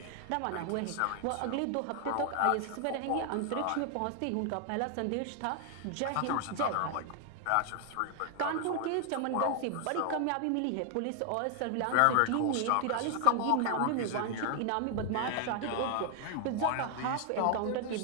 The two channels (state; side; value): different; both; correlation 0.00